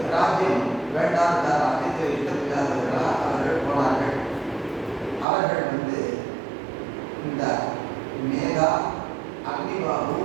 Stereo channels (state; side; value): drops out; left; at 5.2 s